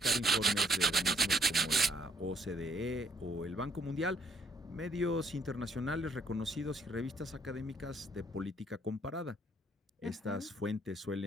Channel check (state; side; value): normal; both; correlation 0.67